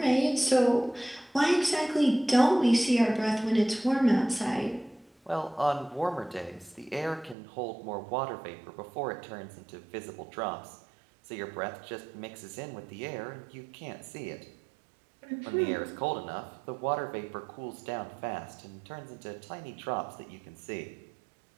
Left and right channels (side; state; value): left; drops out; at 7.4 s